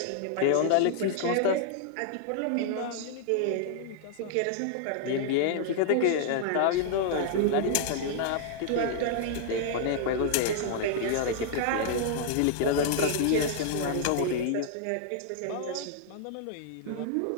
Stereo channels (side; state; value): both; different; correlation -0.01